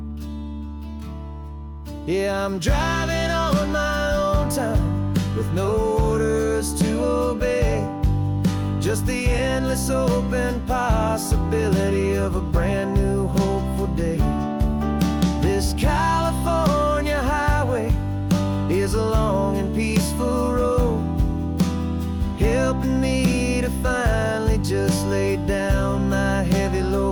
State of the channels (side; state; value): both; identical; correlation 1.00